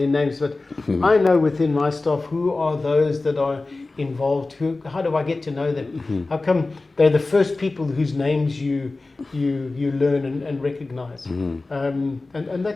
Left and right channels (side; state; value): right; quieter; 3.4 dB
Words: but I know within my staff who are those that are involved. How do I get to know them? How come they're the first people whose names you learn and recognize? And